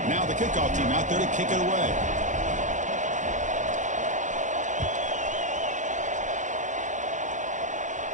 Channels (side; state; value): left; late; 0.36 ms